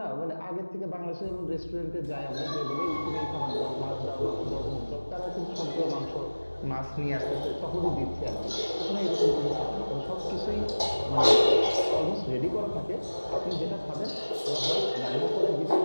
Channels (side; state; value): both; inverted; correlation -1.00